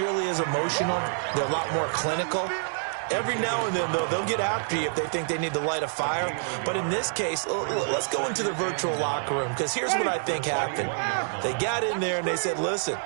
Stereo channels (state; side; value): silent; left; digital silence